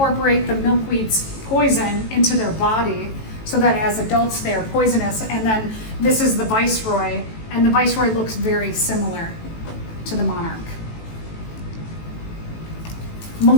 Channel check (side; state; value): right; late; 18 ms